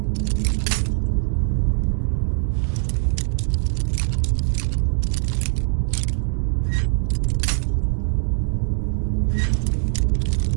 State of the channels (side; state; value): left; silent; digital silence